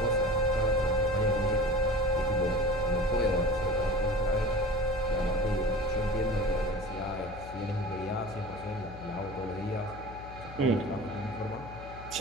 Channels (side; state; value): left; noise; hum, 14 dB below the sound